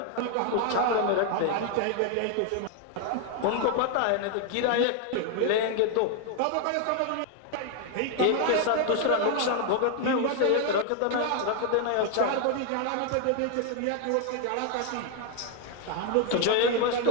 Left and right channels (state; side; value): different; both; correlation 0.00